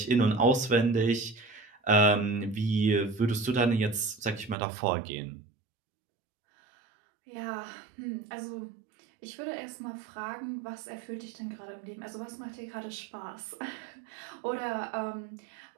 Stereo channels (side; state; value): left; drops out; at 4.5 s